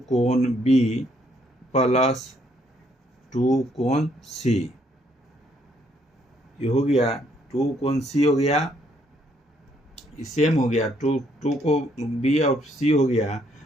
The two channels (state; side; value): normal; both; correlation 0.70